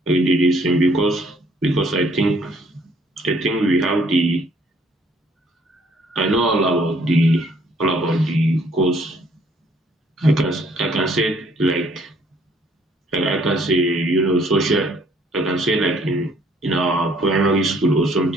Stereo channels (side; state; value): both; normal; correlation 0.63